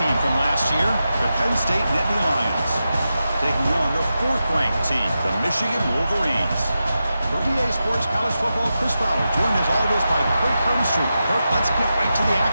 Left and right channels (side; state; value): both; inverted; correlation -0.90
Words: from last year, the Penn State Nittany Lions, taking on the fourth-ranked team, the Michigan Wolverines. For EA Sports College Football, Chris Fowler, joined as always by Kirk Herbstreit. Kirk, let's get right to the